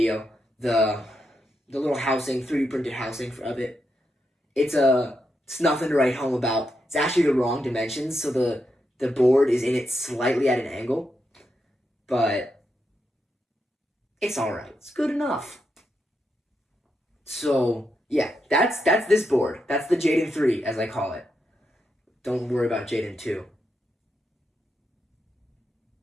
the little housing, 3D printed housing of it. It's nothing to write home about. It's actually the wrong dimensions, so the board is in it slightly at an angle. But it's alright. It's good enough. So, yeah, that's this board. That's the Jaden 3, as I call it. Don't worry about Jaden 2.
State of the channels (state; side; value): normal; both; correlation 0.84